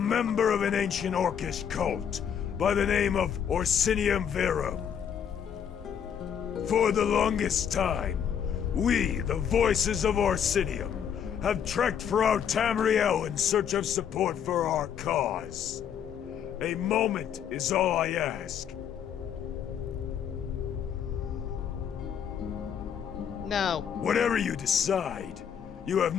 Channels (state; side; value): quieter; right; 8.3 dB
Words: of an ancient Orcish cult by the name of Orsinium Verum. For the longest time, we, the voices of Orsinium, have trekked throughout Tamriel in search of support for our cause. A moment is all I ask. No. Whatever you decide, you have